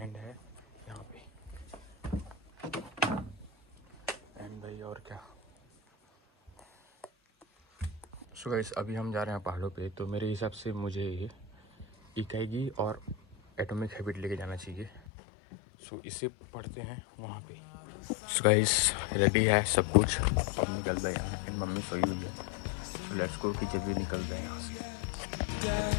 है यहाँ पे। एंड भाई और क्या। सो गाइस अभी हम जा रहे हैं पहाड़ों पे। तो मेरे हिसाब से मुझे इकाईगी और एटॉमिक हैबिट लेके जाना चाहिए। सो इसे पढ़ते हैं वहाँ पे। सो गाइस रेडी है सब कुछ, अब निकल रहे हैं। एंड मम्मी सोई हुई है। तो लेट्स गो कि जल्दी निकल रहे हैं यहाँ से।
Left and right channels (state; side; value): drops out; right; at 15.0 s